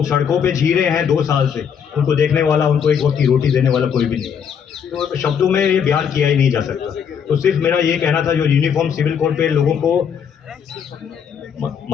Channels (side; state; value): right; quieter; 7.5 dB